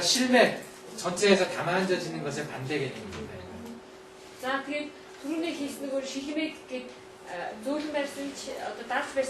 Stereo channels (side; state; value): both; identical; correlation 1.00